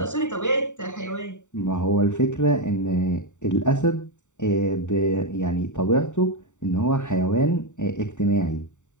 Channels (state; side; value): late; right; 0.85 ms